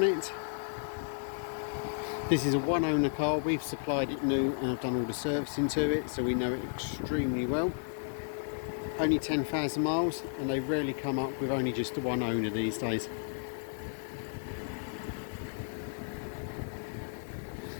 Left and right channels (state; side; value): silent; right; digital silence